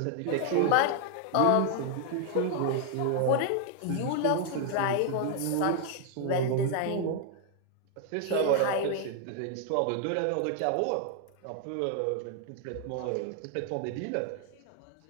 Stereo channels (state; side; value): different; both; correlation 0.00